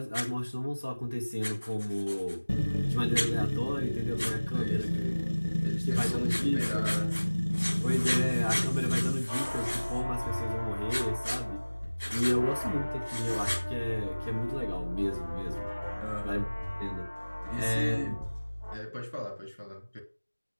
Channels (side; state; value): both; inverted; correlation -1.00